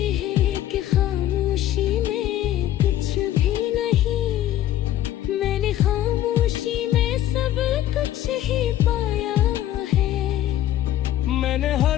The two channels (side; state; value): right; quieter; 12.6 dB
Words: हैं कि खामोशी में कुछ भी नहीं, मैंने खामोशी में सब कुछ ही पाया है। मैंने